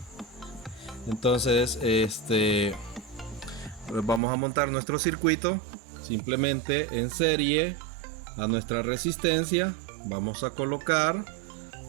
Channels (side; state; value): left; drops out; at 4.2 s